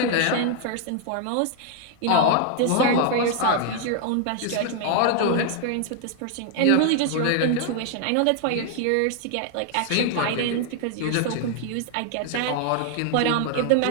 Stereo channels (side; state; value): both; different; correlation 0.00